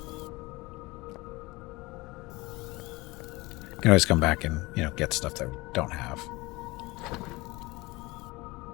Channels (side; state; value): right; quieter; 22.4 dB